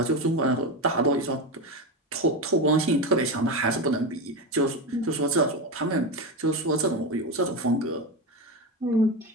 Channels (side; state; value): both; normal; correlation 0.17